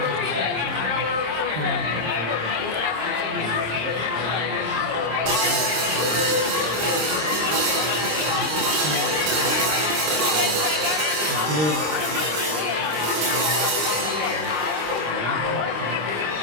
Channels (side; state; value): left; late; 26 ms